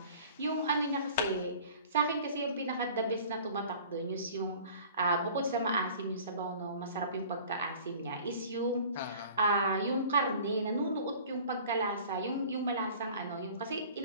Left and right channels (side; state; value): both; inverted; correlation -0.46